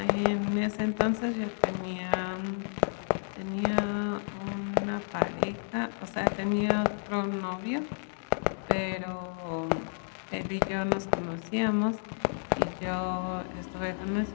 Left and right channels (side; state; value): right; silent; 57 dB below the other